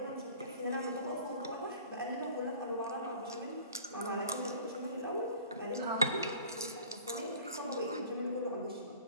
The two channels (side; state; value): both; inverted; correlation -0.45